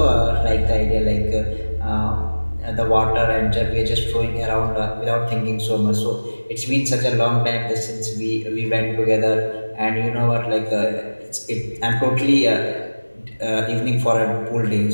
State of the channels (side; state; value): both; inverted; correlation -1.00